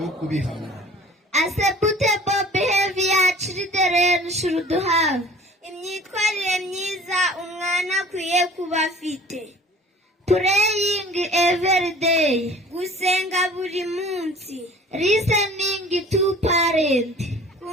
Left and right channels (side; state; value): both; normal; correlation 0.47